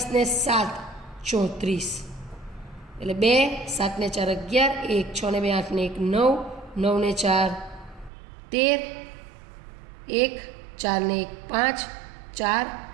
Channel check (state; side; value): drops out; left; at 8.1 s